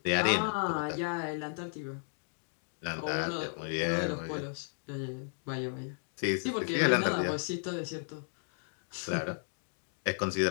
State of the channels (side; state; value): right; silent; digital silence